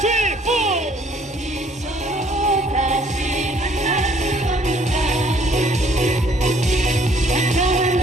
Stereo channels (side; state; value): both; normal; correlation 0.61